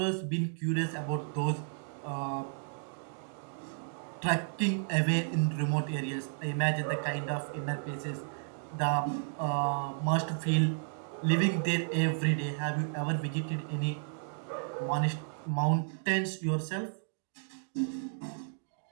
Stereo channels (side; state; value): left; silent; digital silence